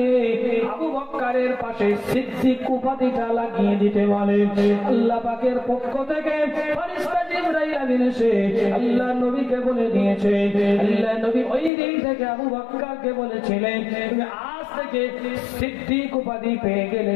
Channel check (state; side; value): drops out; right; at 11.7 s